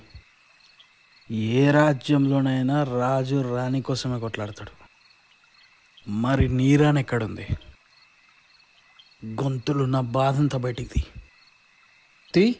ఏ రాజ్యంలోనైనా రాజు రాణి కోసమే కొట్లాడతాడు. మరి నీ రాణి ఎక్కడుంది? గొంతులు నా బాధంతా బయటికి తీ.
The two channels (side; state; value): both; identical; correlation 1.00